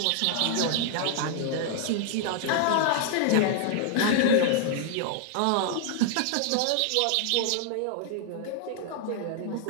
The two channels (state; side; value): different; both; correlation 0.00